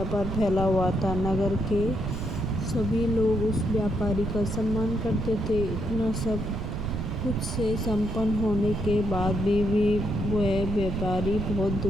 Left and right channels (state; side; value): noise; right; rumble, 3 dB below the sound